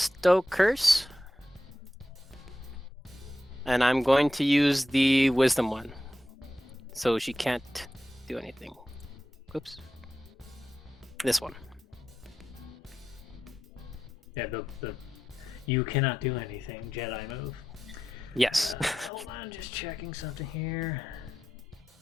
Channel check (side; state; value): both; normal; correlation 0.90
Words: Curse. And I'm going to use the Wisdom one. So she can't do anything. Oops. This one. Yeah, the you cannot do anything Jedi move. Yes. Hold on, just checking something here.